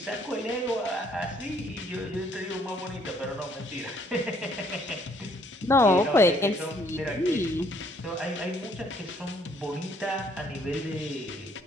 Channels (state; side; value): normal; both; correlation 0.64